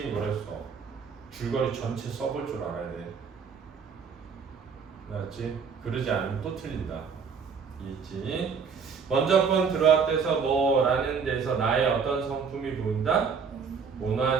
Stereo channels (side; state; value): left; quieter; 5.9 dB